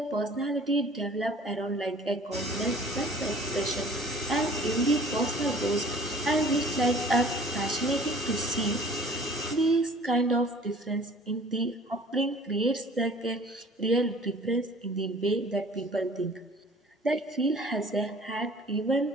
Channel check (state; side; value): normal; both; correlation 0.50